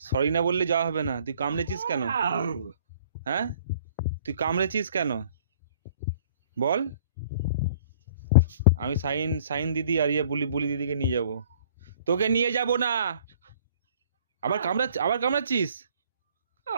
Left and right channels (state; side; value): inverted; both; correlation -0.54